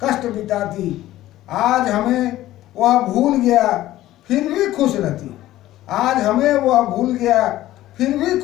कष्ट बिताती। आज हमें वह भूल गया फिर भी खुश रहती, आज हमें वह भूल गया फिर भी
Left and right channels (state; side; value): quieter; right; 15.0 dB